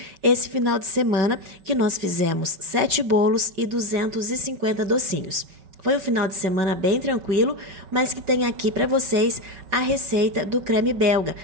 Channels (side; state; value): left; late; 5.3 ms